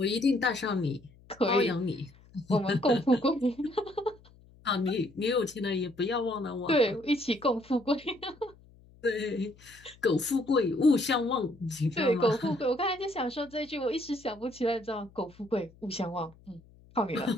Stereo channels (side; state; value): left; noise; hum, 26 dB below the sound